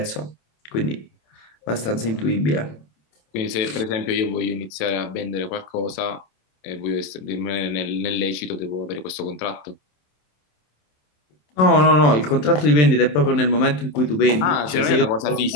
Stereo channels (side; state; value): right; late; 27 ms